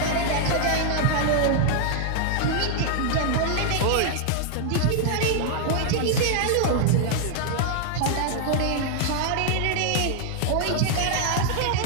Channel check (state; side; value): different; both; correlation 0.00